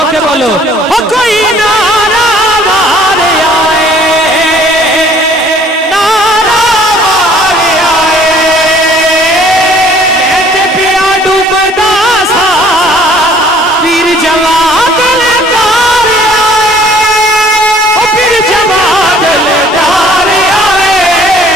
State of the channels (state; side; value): normal; both; correlation 0.56